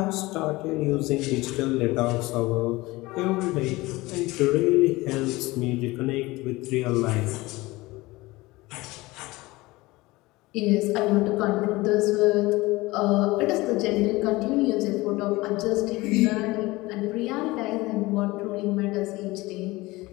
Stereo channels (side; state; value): right; quieter; 20.8 dB